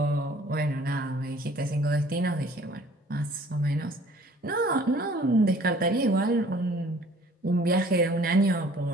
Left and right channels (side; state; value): both; normal; correlation 0.53